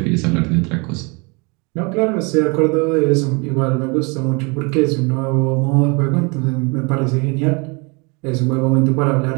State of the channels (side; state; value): left; quieter; 30.2 dB